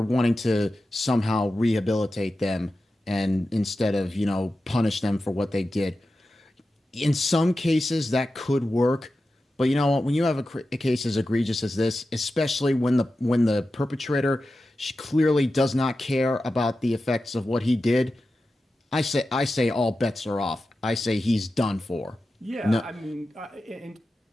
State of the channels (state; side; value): normal; both; correlation 0.92